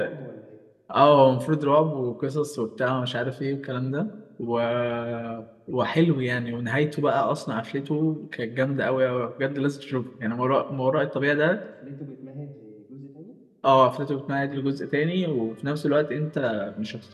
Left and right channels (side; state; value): both; identical; correlation 1.00